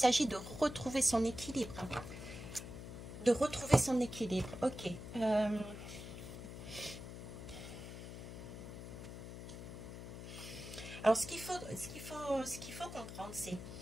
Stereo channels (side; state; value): left; noise; hum, 10 dB below the sound